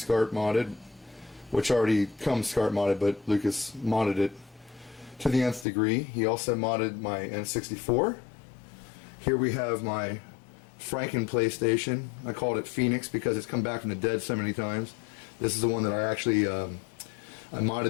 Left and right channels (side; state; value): right; drops out; at 5.7 s